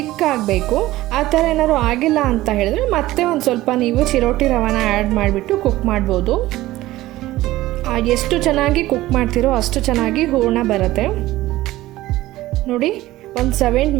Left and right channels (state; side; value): quieter; left; 16.6 dB